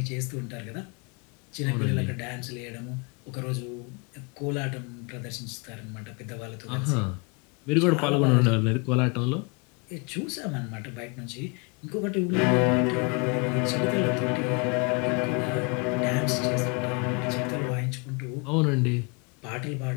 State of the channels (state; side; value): quieter; right; 32.2 dB